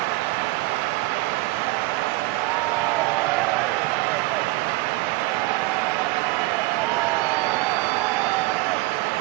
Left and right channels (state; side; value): quieter; left; 20.7 dB